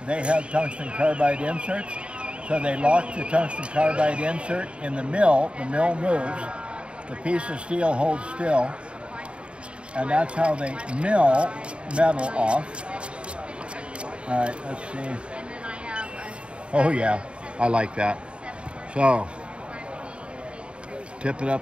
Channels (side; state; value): left; late; 0.056 ms